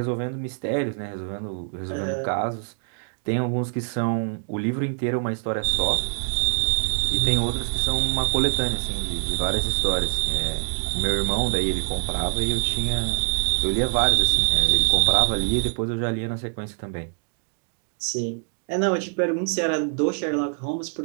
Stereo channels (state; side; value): silent; left; 62 dB below the other